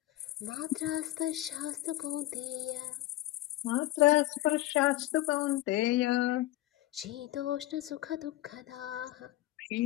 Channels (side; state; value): right; quieter; 16.2 dB